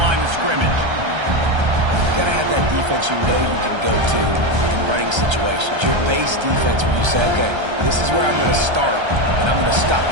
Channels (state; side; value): late; left; 1.3 ms